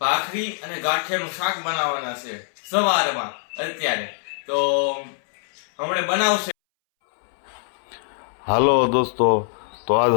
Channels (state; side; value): silent; right; 63 dB below the other